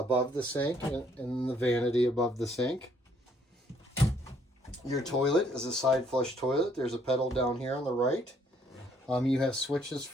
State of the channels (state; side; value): normal; both; correlation 0.66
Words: the sink and in the vanity above the sink. Your toilet is a side flush toilet. There's a pedal down here on the right. You have switches